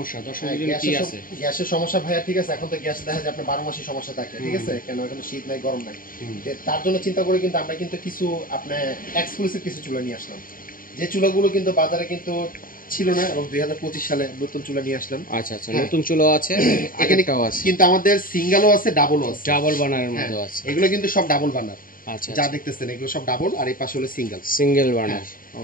দর্শকদের জন্য কি আছে? গ্যাসের সমস্যা ভাইয়া, ঠিক আছে। এখন তো গ্যাস দেখা যায় আপনার 12 মাসই সমস্যা থাকে, ঠিক আছে। কেন এখন শীত নাই, গরম নাই, তার জন্য চিন্তা করে কিন্তু আমরা কিন্তু কিছু আপনার এক্সক্লুসিভ কিছু চুলা নিয়ে আসলাম, যে চুলাগুলো কিন্তু বাজারে কিন্তু ছিল না, এবং 2025 সালে নতুন চুলা নিয়ে আসলাম। আচ্ছা আচ্ছা, নতুন চুলা আছে, আগেরটাও আছে, কিন্তু আমাদের সিঙ্গেলও আছে, ডাবলও আছে, ডাবল বার্নারের মধ্যে আছে। এগুলো কিন্তু সব ডাবল বার্নার। আচ্ছা, যা দেখতেছেন এগুলো সব ডাবল, আর এই পাশে হলো সিঙ্গেল বার্নার।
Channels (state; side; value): late; right; 0.41 ms